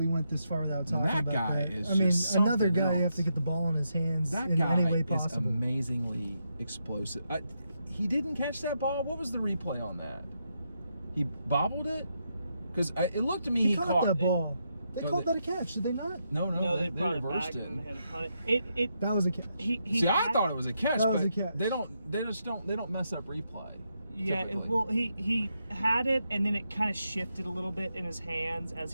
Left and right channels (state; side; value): inverted; both; correlation -0.82